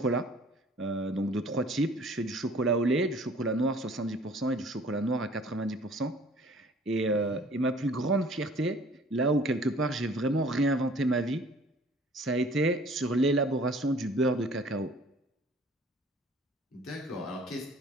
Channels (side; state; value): both; normal; correlation 0.52